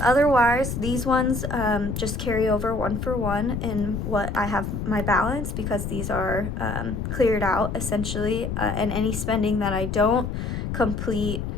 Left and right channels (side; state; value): left; noise; rumble, 4 dB below the sound